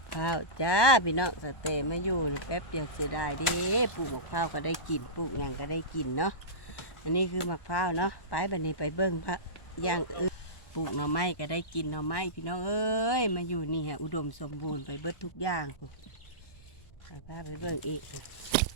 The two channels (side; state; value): right; late; 1.2 ms